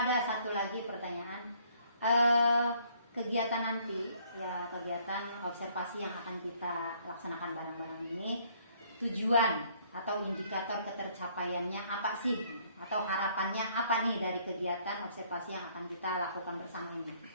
satu lagi pertanyaan. Kegiatan nanti ya, kegiatan observasi yang akan kita laksanakan bareng-bareng ini, tujuan atau indikator ketercapaiannya apa sih, atau harapannya apa nih dari kegiatan observasi yang akan kita lakukan bersama ini?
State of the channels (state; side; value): inverted; both; correlation -0.63